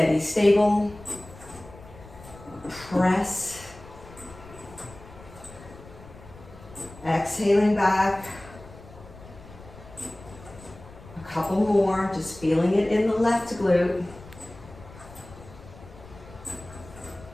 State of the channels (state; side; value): noise; left; rumble, 19 dB below the sound